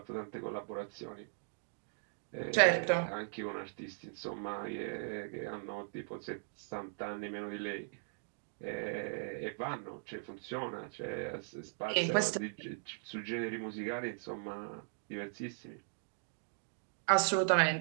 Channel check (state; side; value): silent; left; digital silence